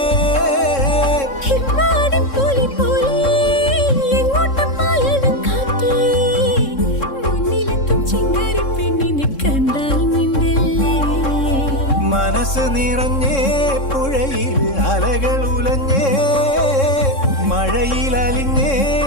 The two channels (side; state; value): right; late; 3.7 ms